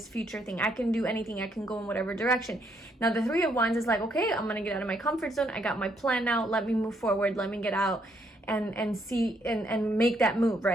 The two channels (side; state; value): both; normal; correlation 0.73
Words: future thing. I can do anything. I can go in whatever direction. Now, the 3 of Wands is like, okay, I'm going to get out of my comfort zone. I got my plan now. Let me move forward. Let me get out and see and make that move,